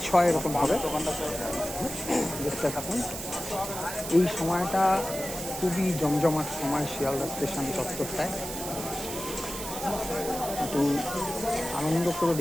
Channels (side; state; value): right; noise; hiss, 8 dB below the sound